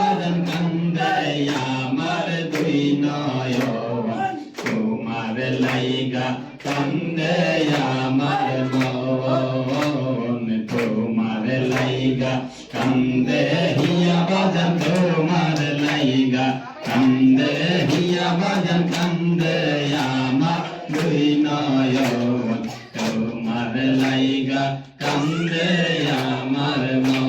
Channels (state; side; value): identical; both; correlation 1.00